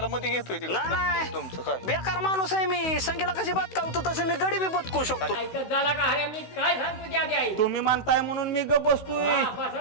मध्ये घेतोय तिकडे. नाही तुमचं काय बेकार माणूस आहे मी. संगीला कशी बदकावतो तसं मी गडी बी बदकू शकतो. तुम्ही म्हणताय म्हणून मी गप बसतोय,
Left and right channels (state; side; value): late; right; 16 ms